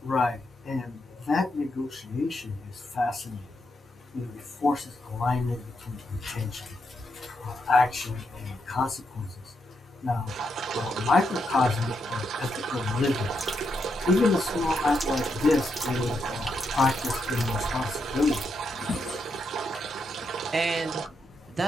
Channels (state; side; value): normal; both; correlation 0.82